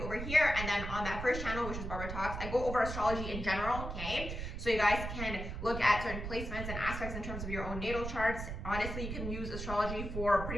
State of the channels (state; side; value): noise; right; rumble, 6 dB below the sound